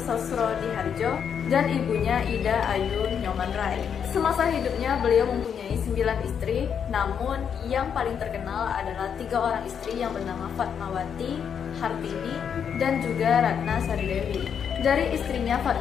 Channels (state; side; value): quieter; right; 7.6 dB